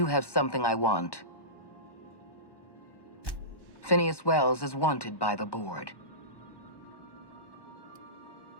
have something I want. Phineas Wells is wanted by the board.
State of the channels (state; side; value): late; right; 1.1 ms